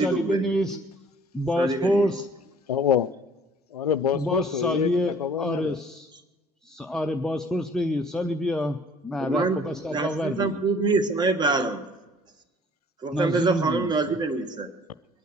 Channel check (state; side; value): normal; both; correlation 0.53